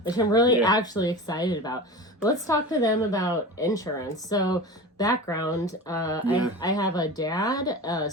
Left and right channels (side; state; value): both; normal; correlation 0.31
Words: which I'm really actually excited about. But let's talk to them about insurance. So background, I have a dad, a